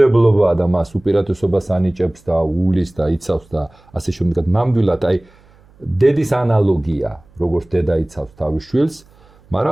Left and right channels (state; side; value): noise; right; hum, 29 dB below the sound